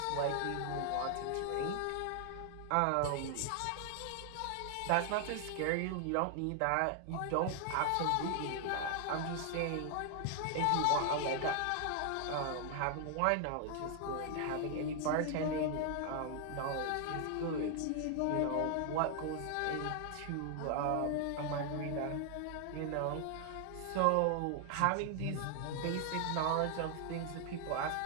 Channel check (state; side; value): different; both; correlation 0.00